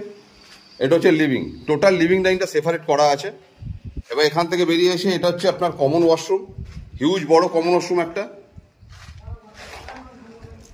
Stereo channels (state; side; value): identical; both; correlation 1.00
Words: এটা হচ্ছে লিভিং। টোটাল লিভিং ডাইনিংটা সেপারেট করা আছে। এবার এখান থেকে বেরিয়ে এসে এটা হচ্ছে আপনার কমন ওয়াশরুম, হিউজ বড় কমন ওয়াশরুম একটা।